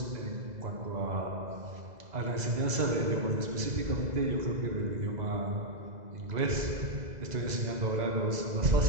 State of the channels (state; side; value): late; left; 2.0 ms